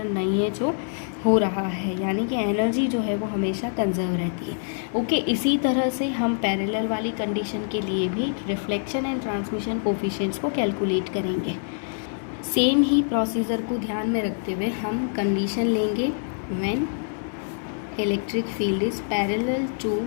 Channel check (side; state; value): right; silent; 62 dB below the other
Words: नहीं है जो हो रहा है, यानी कि एनर्जी जो है वो हमेशा कंजर्व रहती है. ओके, इसी तरह से हम पैरेलल वाली कंडीशन के लिए भी रिफ्लेक्शन एंड ट्रांसमिशन कोफिशिएंट्स को कैलकुलेट करेंगे. सेम ही प्रोसीजर को ध्यान में रखते हुए हम कंडीशन लेंगे when electric field is parallel to